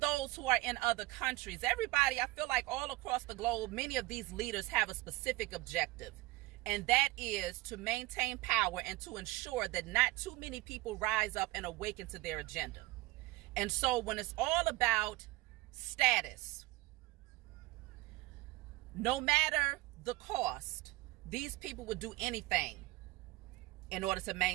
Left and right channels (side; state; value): left; quieter; 20.4 dB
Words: who are in other countries, everybody, I feel like all across the globe, many of these leaders have a specific objective. And that is to maintain power and to ensure that not too many people rise up and awaken to their agenda. And so when it's all about status, no matter the cost, these people would do anything in order to